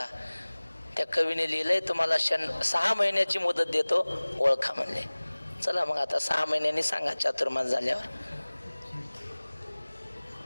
त्या कवीने लिहिलंय तुम्हाला 6 महिन्याची मुदत देतो, ओळखा म्हणले. चला मग आता 6 महिन्यांनी सांगा चातुर्मास झाल्यावर.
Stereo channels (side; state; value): both; inverted; correlation -1.00